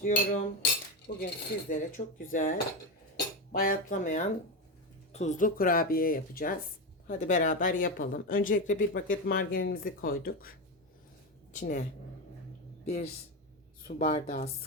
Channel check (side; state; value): both; normal; correlation 0.14